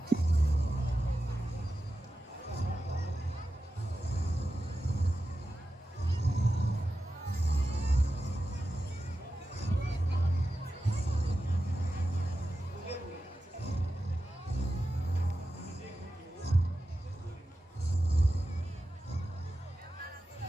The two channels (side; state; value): both; normal; correlation 0.92